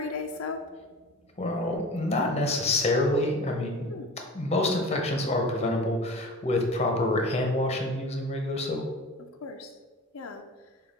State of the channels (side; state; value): both; normal; correlation 0.37